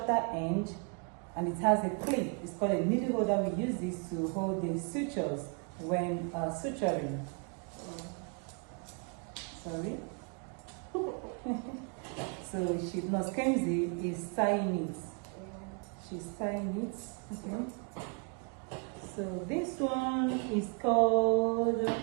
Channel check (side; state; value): left; quieter; 37.5 dB